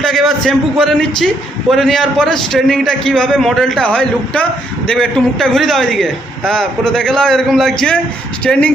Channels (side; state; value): both; normal; correlation 0.72